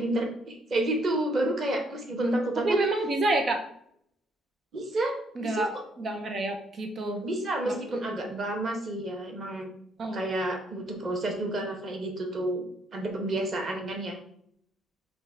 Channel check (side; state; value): both; normal; correlation 0.69